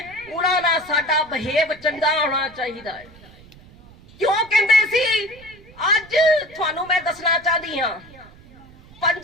उन्हां नाल साडा बिहेव चंगा होना चाहिए है। क्यों कहते सी? अज तुहानूं मैं दसना चाहती हाँ,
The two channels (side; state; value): right; noise; rumble, 23 dB below the sound